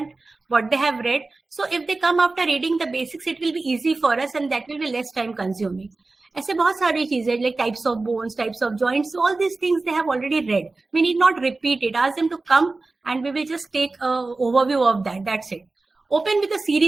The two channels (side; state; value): left; quieter; 3.5 dB